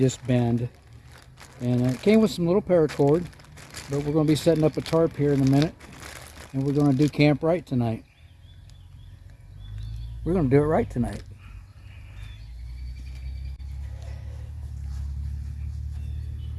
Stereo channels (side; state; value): both; identical; correlation 1.00